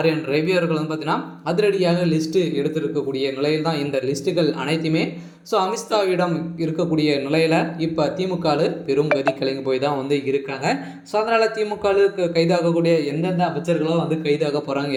ரவி அவர்கள் பார்த்தீங்கன்னா அதிரடியாக லிஸ்ட்டு எடுத்திருக்கக்கூடிய நிலையில் தான் இந்த லிஸ்ட்டுகள் அனைத்துமே அமித்ஷாவிடம் இருக்கக்கூடிய நிலையில் இப்போ திமுகவில் பெரும் கதி கலங்கி போய் தான் இருக்காங்க. ஸோ அதனால் திமுகவுக்கு கைதாகக்கூடிய எந்தெந்த அமைச்சர்களும் கைதாக போகிறாங்க,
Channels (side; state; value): both; identical; correlation 1.00